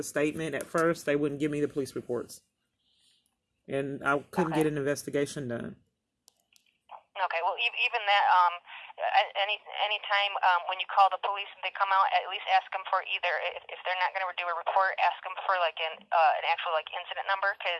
statement at first. They wouldn't give me the police reports, and I couldn't get an investigation done. Okay. Well, even that. Any time when you call the police and they come out, at least ask them for either, if they're not going to do a report, ask them for like an actual like incident number,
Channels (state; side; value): identical; both; correlation 1.00